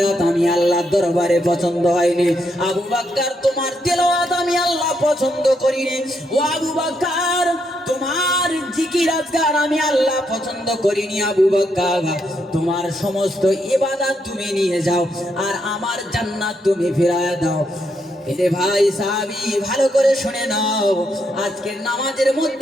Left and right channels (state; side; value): normal; both; correlation 0.78